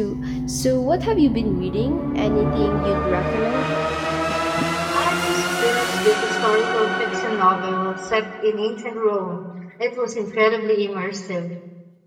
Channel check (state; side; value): identical; both; correlation 1.00